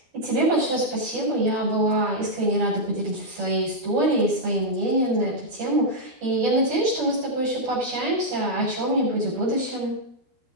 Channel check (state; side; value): late; left; 12 ms